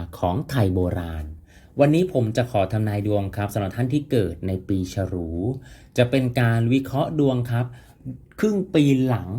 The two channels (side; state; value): both; identical; correlation 1.00